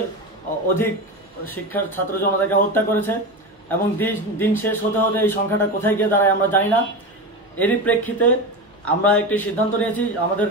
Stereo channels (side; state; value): both; normal; correlation 0.22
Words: অধিক শিক্ষার ছাত্র জনতাকে হত্যা করেছে, এবং দিন শেষ হতে হতে এই সংখ্যাটা কোথায় গিয়ে দাঁড়ায় আমরা জানি না। এরই প্রেক্ষিতে আমরা একটি সিদ্ধান্ত নিয়েছি, আমাদের